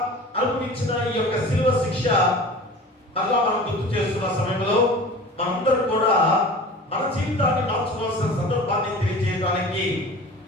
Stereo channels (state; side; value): normal; both; correlation 0.39